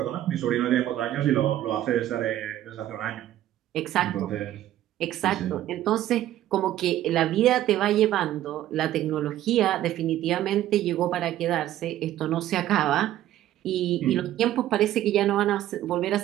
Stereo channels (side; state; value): left; quieter; 13.1 dB